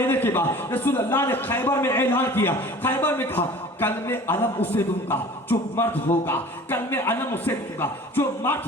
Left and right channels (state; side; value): normal; both; correlation 0.44